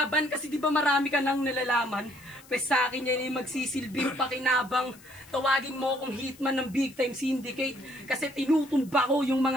Kasi di ba marami ka nang nalalaman? Pues sa akin yan yung magsisilbing pakinabang. Tawagin mo akong hitman ng big time syndicate. Kasi tinutumba ko yung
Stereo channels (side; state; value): left; noise; hiss, 23 dB below the sound